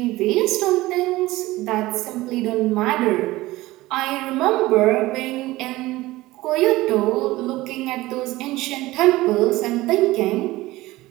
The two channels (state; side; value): quieter; left; 18.4 dB